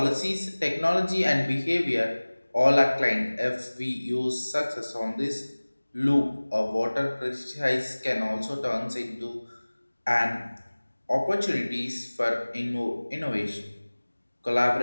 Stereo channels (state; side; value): inverted; both; correlation -1.00